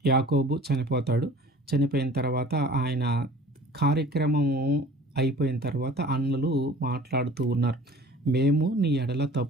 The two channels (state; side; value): normal; both; correlation 0.46